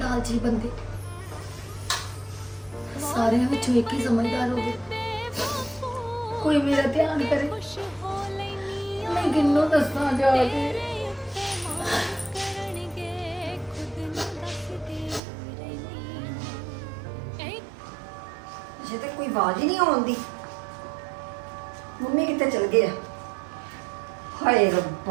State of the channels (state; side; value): drops out; left; at 15.2 s